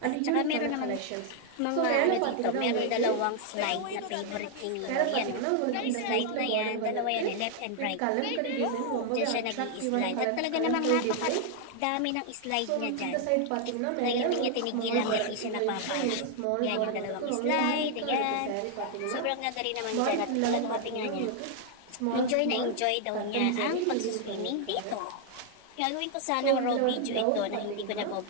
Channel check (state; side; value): different; both; correlation 0.00